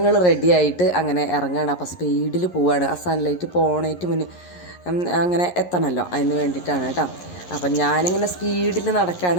റെഡി ആയിട്ട് അങ്ങനെ ഇറങ്ങുകയാണ്. അപ്പോൾ സ്പീഡിൽ പോവുകയാണ്. ആ സൺലൈറ്റ് പോണേറ്റ് മുന്നേ അങ്ങനെ എത്തണമല്ലോ, അതിന് വേണ്ടിയിട്ടാണ് കേട്ടോ. അപ്പം ഞാനിങ്ങനെ സ്പീഡിൽ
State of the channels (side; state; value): right; late; 11 ms